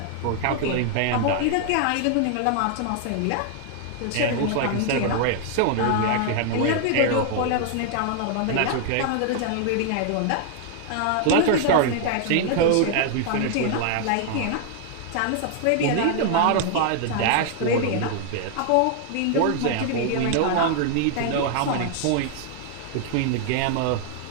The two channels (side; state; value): both; different; correlation 0.00